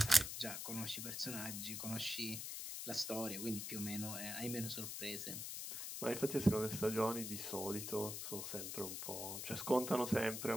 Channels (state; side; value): noise; left; hiss, 5 dB below the sound